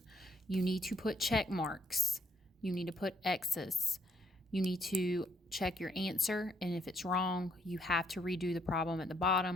You need to put check marks. You need to put X's. You need to check your answer, and if it's wrong, you have to redo the problem at the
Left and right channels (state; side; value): normal; both; correlation 0.70